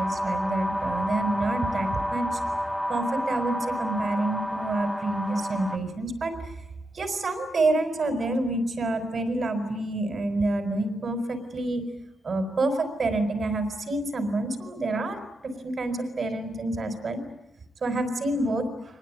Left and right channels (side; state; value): both; normal; correlation 0.85